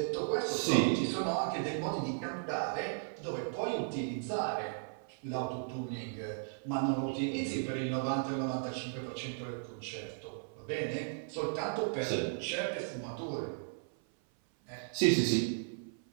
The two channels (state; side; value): silent; left; 54 dB below the other